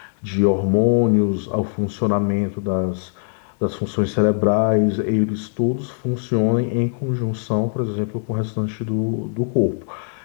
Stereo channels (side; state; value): right; silent; 65 dB below the other